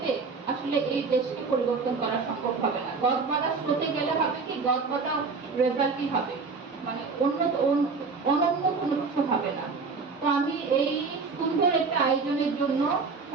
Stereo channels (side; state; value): left; quieter; 4.6 dB